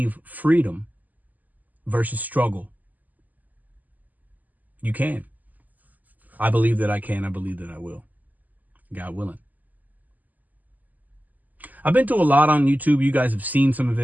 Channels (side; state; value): left; late; 0.081 ms